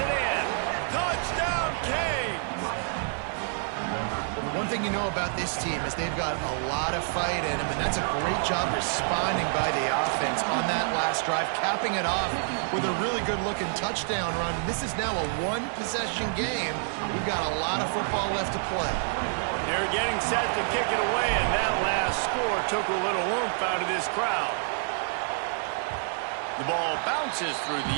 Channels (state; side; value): silent; left; 58 dB below the other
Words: in. Touchdown, Canes. Well, the one thing you know about this team is they've got a lot of fight in them, and that's a great job responding by the offense on that last drive, capping it off with a really good-looking touchdown run. This is now a one-possession game. We've got a lot of football left to play. They're getting set to kick it away, and that last score took a little oomph out of this crowd. The ball bounces through